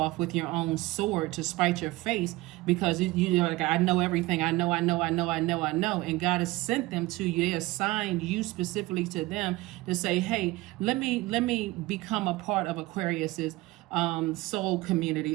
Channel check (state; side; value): quieter; left; 19.9 dB